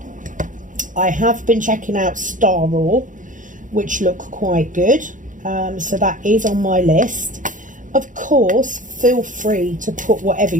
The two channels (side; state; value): left; late; 0.38 ms